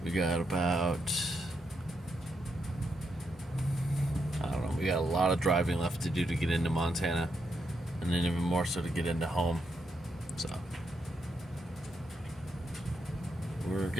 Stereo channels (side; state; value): both; normal; correlation 0.81